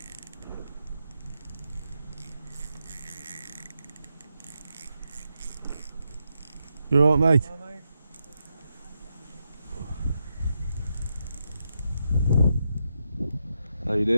You alright, mate? Hello, mate. How you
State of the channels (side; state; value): both; inverted; correlation -0.84